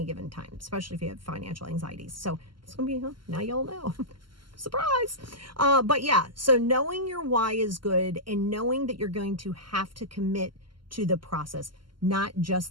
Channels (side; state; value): left; late; 0.72 ms